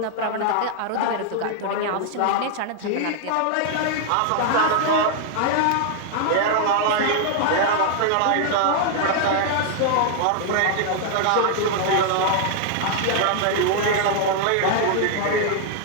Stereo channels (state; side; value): different; both; correlation 0.00